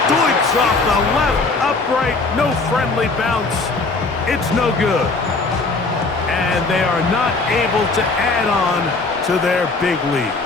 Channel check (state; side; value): quieter; right; 3.7 dB